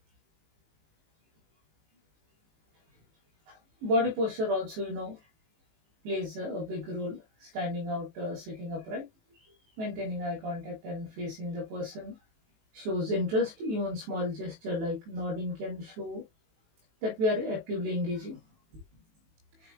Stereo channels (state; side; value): late; left; 19 ms